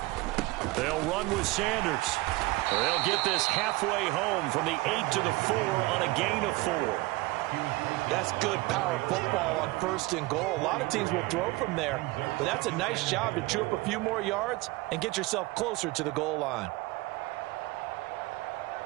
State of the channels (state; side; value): quieter; left; 21.5 dB